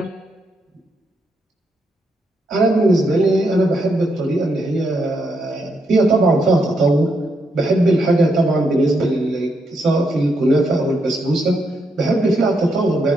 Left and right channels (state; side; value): normal; both; correlation 0.80